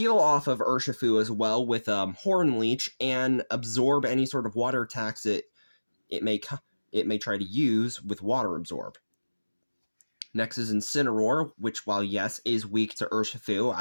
off of Urshifu as well with Horn Leech and absorb any sort of water attacks it may try to use with Water Absorb. Next is Incineroar, which, while yes, is weak to Urshifu,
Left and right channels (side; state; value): both; inverted; correlation -1.00